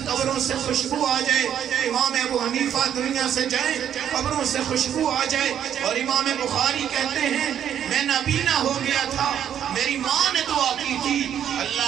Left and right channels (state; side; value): quieter; left; 9.6 dB